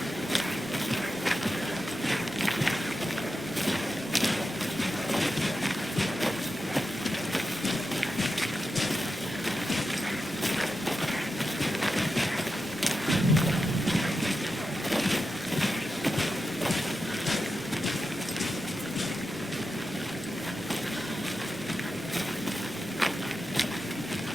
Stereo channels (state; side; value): normal; both; correlation 0.89